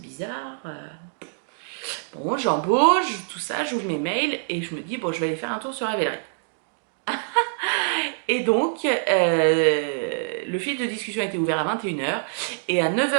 bizarre. Bon, j'embauche, tout ça, j'ouvre mes mails, et je me dis, bon, je vais aller faire un tour sur Ravelry. Et donc, le fil de discussion a été ouvert à 21h et à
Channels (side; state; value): left; silent; digital silence